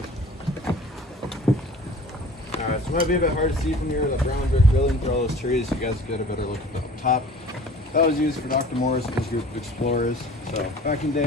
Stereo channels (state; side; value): normal; both; correlation 0.45